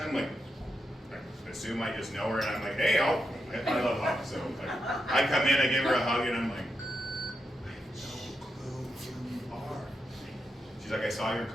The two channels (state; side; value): normal; both; correlation 0.84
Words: I'm like, I assume I just know her, and I'm like, hey, I love hugs, so like, I come in, I give her a hug, and I'm like, I have no clue who you are. She's like, I saw your